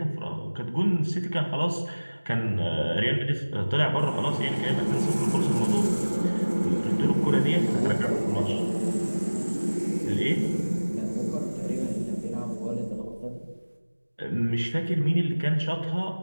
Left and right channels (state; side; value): inverted; both; correlation -1.00